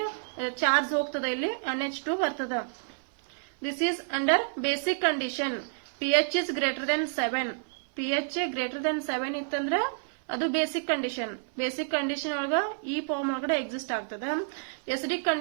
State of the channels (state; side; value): silent; left; 58 dB below the other